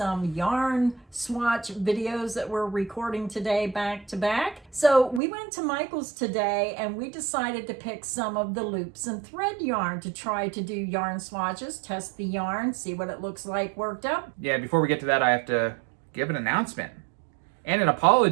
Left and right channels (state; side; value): drops out; left; at 5.2 s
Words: yarn swatch videos that we're recording today back to back. So we went to Michael's today and we decided to pick some of the loops and thread yarn to try to do yarn swatches, test the yarn, see what it looks like worked up. Yeah, before we get to that, I have to give an announcement and an